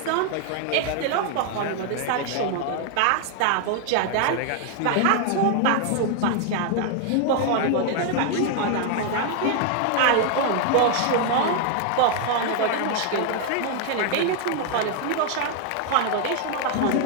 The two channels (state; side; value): different; both; correlation 0.00